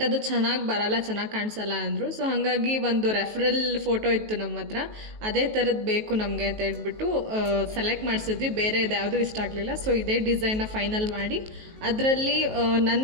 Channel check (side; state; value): left; late; 19 ms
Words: ಅದು ಚೆನ್ನಾಗಿ ಬರಲ್ಲ, ಚೆನ್ನಾಗಿ ಕಾಣಿಸಲ್ಲ ಅಂದರು. ಸೊ ಹಾಗಾಗಿ ಒಂದು ರೆಫರಲ್ ಫೋಟೋ ಇತ್ತು ನಮ್ಮ ಹತ್ರ, ಅದೇ ಥರದ್ದು ಬೇಕು ನಮಗೆ ಅಂತ ಹೇಳ್ಬಿಟ್ಟು ಸೆಲೆಕ್ಟ್ ಮಾಡಿಸಿದ್ವಿ. ಬೇರೆ ಇದು ಯಾವುದೂ ಇಷ್ಟ ಆಗಲಿಲ್ಲ. ಸೊ ಇದೇ ಡಿಸೈನ್ನ ಫೈನಲ್ ಮಾಡಿ ಅದರಲ್ಲಿ